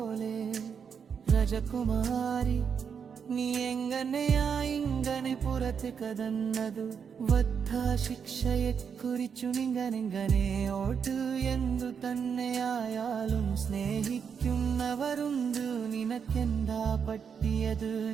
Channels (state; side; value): quieter; left; 6.8 dB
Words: രാജകുമാരി നീ എങ്ങനെയാ ഇങ്ങനെ പുറത്ത് കടന്നതു? വധശിക്ഷയെക്കുറിച്ചു നിങ്ങനെങ്ങനെ ഓട്ട് എന്തു തന്നെയായാലും സ്നേഹിക്കുന്നവരുണ്ട്. നിനക്കെന്താ പറ്റിയത്?